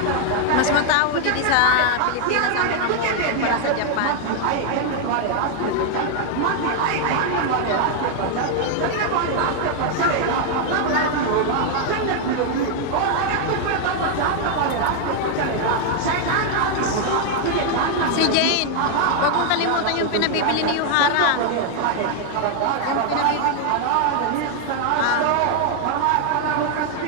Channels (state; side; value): different; both; correlation 0.00